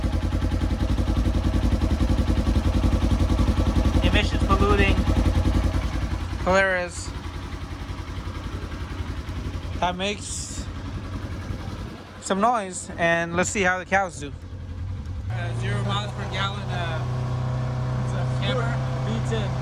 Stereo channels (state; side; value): identical; both; correlation 1.00